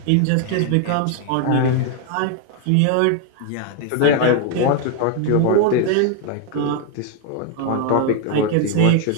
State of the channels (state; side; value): different; both; correlation 0.01